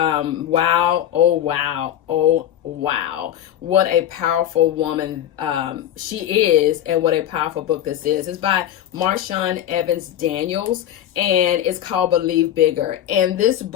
wow, oh wow, oh wow. What a powerful woman she is, and what a powerful book this is. It's by Marshawn Evans Daniels, and it's called Believe Bigger. And this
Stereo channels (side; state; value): right; quieter; 11.3 dB